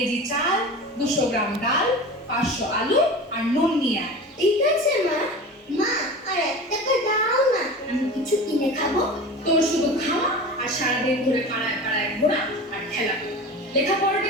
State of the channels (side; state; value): both; normal; correlation 0.33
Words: চাল, 200 গ্রাম ডাল, 500 আলু আর নুন নিয়ে আয়। ঠিক আছে মা। মা, আর 1 টাকা দাও না, আমি কিছু কিনে খাবো। তোর শুধু খাওয়া আর সারাদিন ধরে পাড়ায় পাড়ায় ঘোরা আর খেলা। লেখাপড়াটা